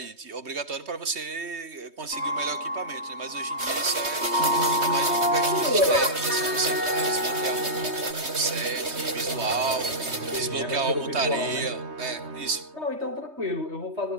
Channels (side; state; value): left; late; 3.2 ms